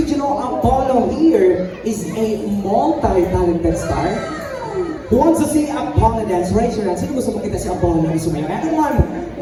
you know Apollo here is a multi-talented star? Who wants to see Apollo dance? Raise your hand. Sino gusto makita si Apollo na sumayaw? Everyone!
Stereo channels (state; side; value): identical; both; correlation 1.00